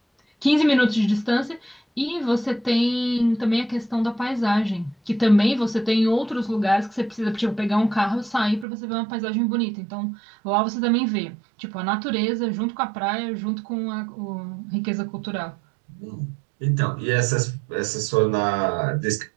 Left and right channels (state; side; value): drops out; left; at 8.7 s